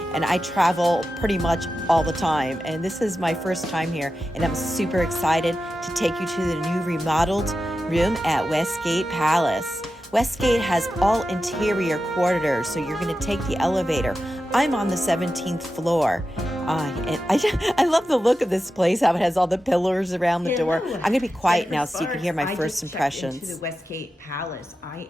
and I travel pretty much all the time. And this is my first time here and I'm super excited to take you to the new remodeled room at Westgate Palace. Westgate has all interior corridors, so you're going to take the elevator. I'm on the 17th floor. And I love the look of this place, how it has all the pillars around the door. I'm going to be quiet now so you can hear my first impressions. Into the Westgate Palace. I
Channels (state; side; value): normal; both; correlation 0.91